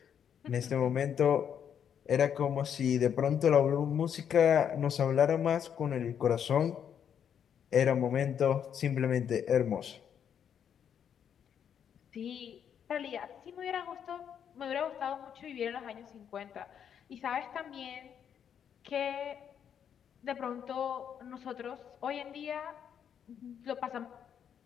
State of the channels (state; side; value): quieter; right; 8.4 dB